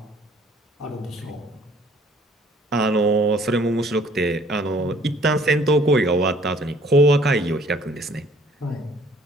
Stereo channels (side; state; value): both; normal; correlation 0.58